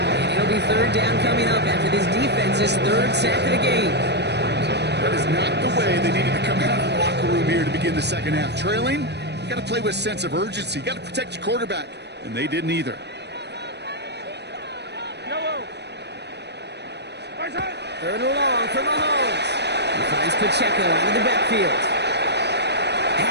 And it'll be 3rd down coming up after this defense's 3rd sack of the game. That is not the way they needed to come out of the locker room here to begin the 2nd half. Trailing, you got to play with a sense of urgency. You got to protect your quarterback, and they didn't either. Third and long for Mahomes. He finds Pacheco out of the backfield.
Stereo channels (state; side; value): late; left; 0.49 ms